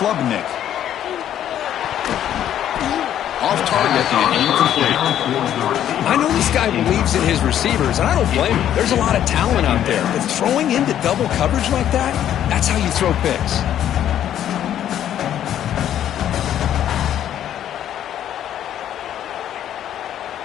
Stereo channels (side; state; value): right; quieter; 10.8 dB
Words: Off target and incomplete. I know this guy believes in his receivers, and I don't blame him. There's a lot of talent out there. But throwing into double coverage like that, that's how you throw picks.